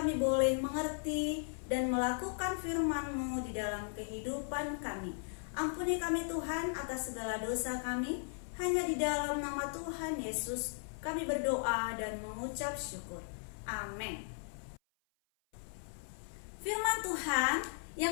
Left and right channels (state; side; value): silent; right; 53 dB below the other